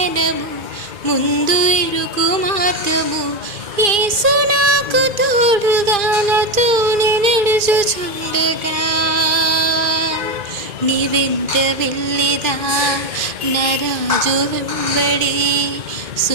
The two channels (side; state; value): left; late; 2.4 ms